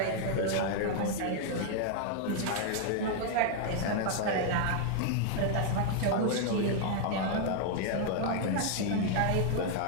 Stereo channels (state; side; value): different; both; correlation 0.00